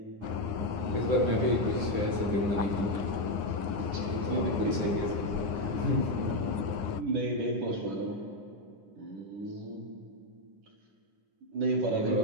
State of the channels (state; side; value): late; left; 9.7 ms